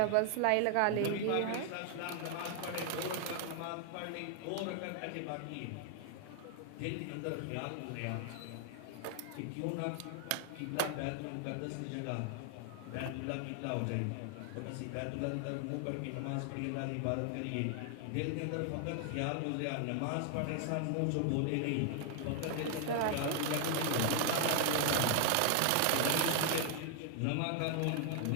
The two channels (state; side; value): different; both; correlation 0.00